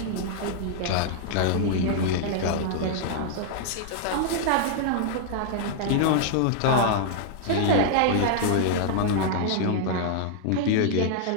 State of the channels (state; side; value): different; both; correlation -0.01